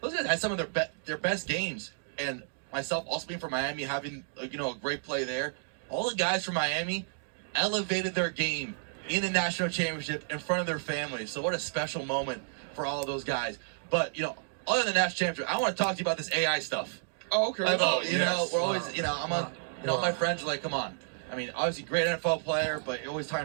those guys had some of their best games, and myself also being from Miami, having a great play there, all the guys from Miami elevated their game in the national championship in front of their families. So what a special moment for all of those guys. But other than the national championship, I want to talk to you about this AI stuff. Oh, okay. We're always, I'm on, my friends are like, come on. I mean, obviously, great NFL player, but you're always talking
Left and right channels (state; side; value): silent; left; digital silence